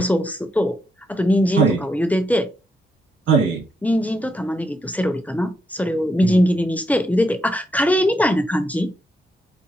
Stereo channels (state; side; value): normal; both; correlation 0.79